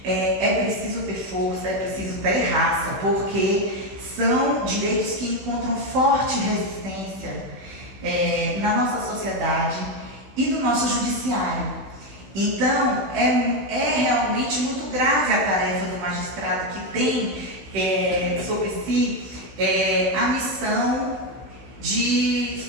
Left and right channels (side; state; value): left; late; 16 ms